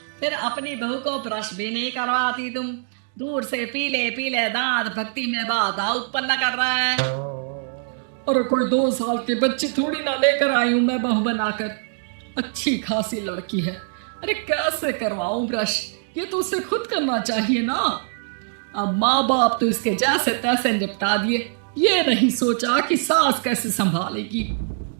फिर अपनी बहू को ब्रश भी नहीं करवाती तुम। दूर से पीले पीले दांत भक्ति में बाधा उत्पन्न कर रहे हैं। और कोई 2 साल के बच्चे थोड़ी ना लेकर आई हूं मैं बहू बनाकर। अच्छी खासी लड़की है, अरे कैसे करवाऊं ब्रश? ये तो उसे खुद करना चाहिए ना। अब माँ बाप तो इसके जैसे तैसे निपटा दिए, ये नहीं सोचा कि सास कैसे संभालेगी।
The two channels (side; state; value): left; silent; digital silence